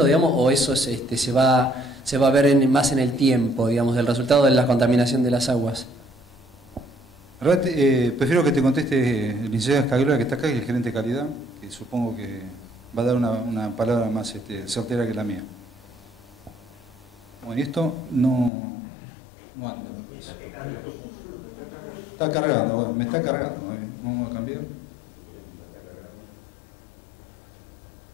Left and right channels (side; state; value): right; drops out; at 18.5 s